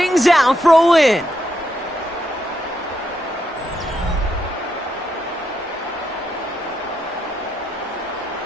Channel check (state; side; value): normal; both; correlation 0.80